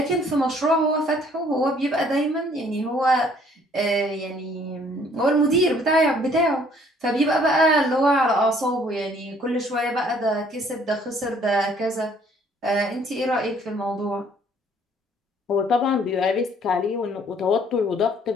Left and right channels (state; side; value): normal; both; correlation 0.60